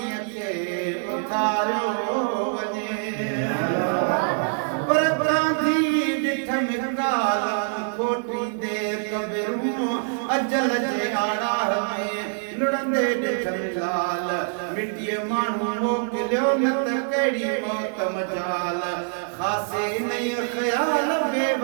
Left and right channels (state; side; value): silent; left; 62 dB below the other